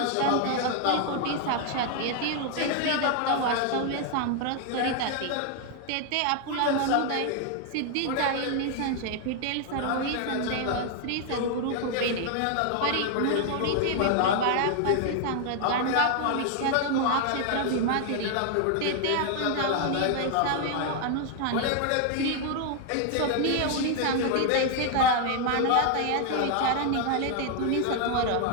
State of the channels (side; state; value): both; different; correlation 0.00